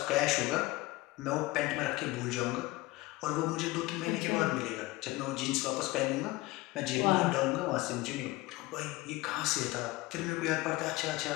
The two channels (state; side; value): quieter; right; 20.0 dB